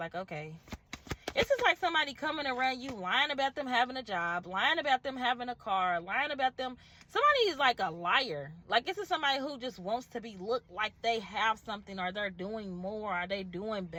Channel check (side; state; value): both; identical; correlation 1.00